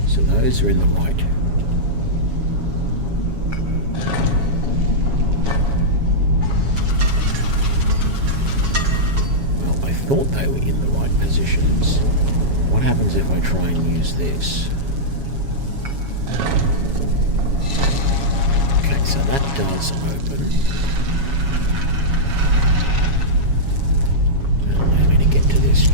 so those are in the right. Well, I thought they were in the positions. What happens if I try and use this? Okay, so that does open. Allow me to get to this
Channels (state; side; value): late; left; 7.2 ms